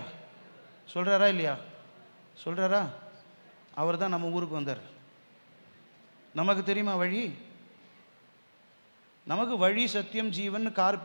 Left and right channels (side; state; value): both; inverted; correlation -1.00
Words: சொல்கிறாரா இல்லையா? சொல்கிறாரா? அவர் தான் நம்ம ஊருக்கு வந்தார். நமக்கு தெரியுமா வழி? நமக்கு வழி சத்தியம் ஜீவன் கார்